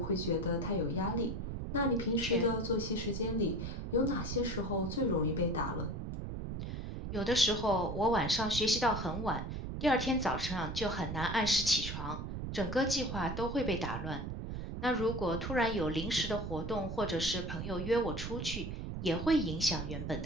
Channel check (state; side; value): noise; right; rumble, 5 dB below the sound